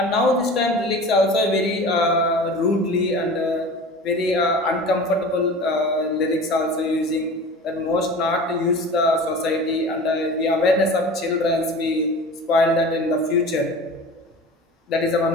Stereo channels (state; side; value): normal; both; correlation 0.37